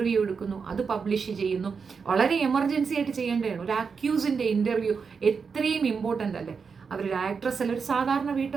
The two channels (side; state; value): left; quieter; 5.6 dB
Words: എടുക്കുന്നു, അത് പബ്ലിഷ് ചെയ്യുന്നു. വളരെ എമർജൻസി ആയിട്ട് ചെയ്യേണ്ടതാണ്. ഒരു അക്യൂസിന്റെ ഇന്റർവ്യൂ എത്രയും ഇമ്പോർട്ടൻ്റ് അല്ലേ? അവരൊരു ആക്ട്രസ് അല്ല, ഒരു സാധാരണ